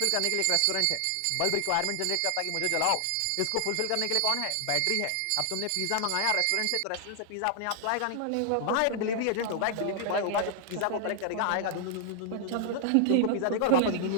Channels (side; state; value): both; different; correlation 0.00